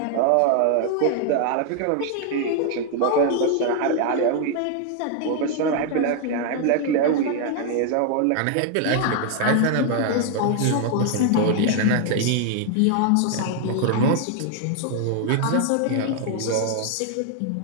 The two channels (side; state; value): both; different; correlation 0.00